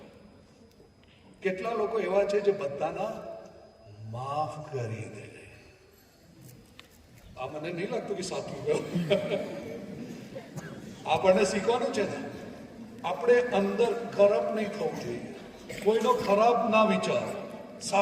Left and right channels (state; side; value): identical; both; correlation 1.00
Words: કેટલા લોકો એવા છે જે બધાના માફ કરી દે? આ મને નહીં લાગતું કે સાચું ગયું. આપણને શીખવાનું છે ને, આપણે અંદર ખરાબ નહીં થવું જોઈએ. કોઈનો ખરાબ ના વિચારો,